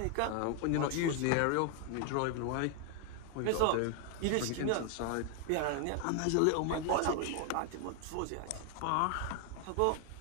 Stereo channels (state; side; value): different; both; correlation 0.00